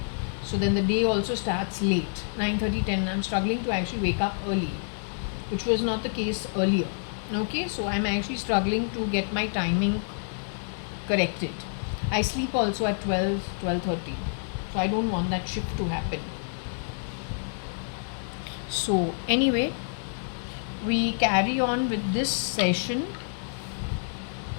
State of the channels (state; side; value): silent; right; 59 dB below the other